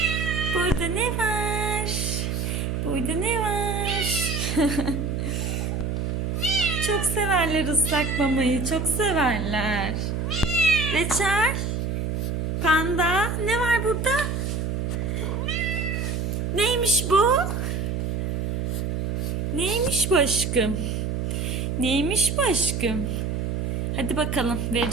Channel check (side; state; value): right; noise; hum, 1 dB below the sound